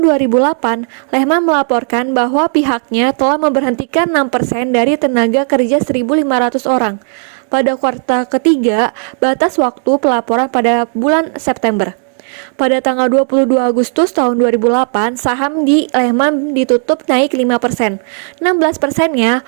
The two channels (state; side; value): silent; left; 56 dB below the other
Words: 2008, Lehman melaporkan bahwa pihaknya telah memberhentikan 6% dari tenaga kerja 1.500 orang. Pada kuartal ketiga, batas waktu pelaporan pada bulan September. Pada tanggal 22 Agustus tahun 2008, saham di Lehman ditutup naik 5%. 16%-nya